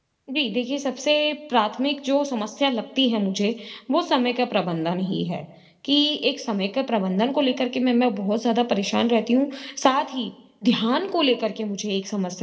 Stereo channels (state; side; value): identical; both; correlation 1.00